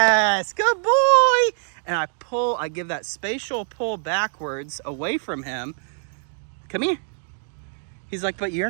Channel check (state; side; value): silent; left; digital silence